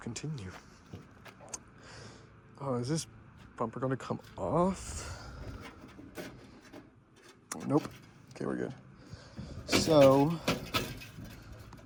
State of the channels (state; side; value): identical; both; correlation 1.00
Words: Oh, is this bumper going to come off? Nope. Okay, we're good. So, I